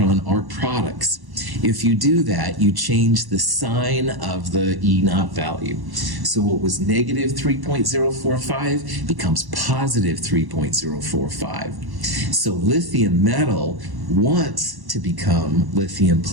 are products. If you do that, you change the sign of the E naught value. So what was negative 3.045 becomes positive 3.045. So lithium metal wants to become lithium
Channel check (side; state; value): left; late; 1.1 ms